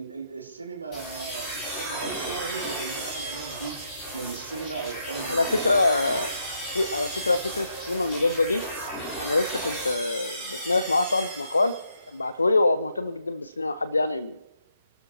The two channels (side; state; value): both; inverted; correlation -0.78